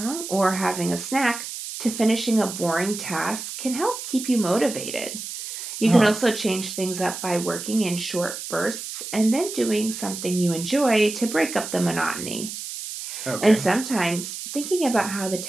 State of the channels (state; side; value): noise; right; hiss, 8 dB below the sound